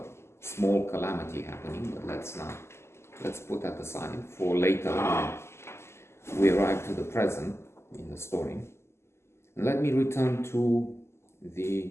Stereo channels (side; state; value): right; late; 0.13 ms